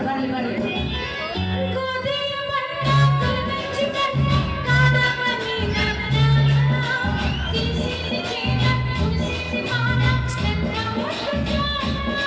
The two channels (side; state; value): both; identical; correlation 1.00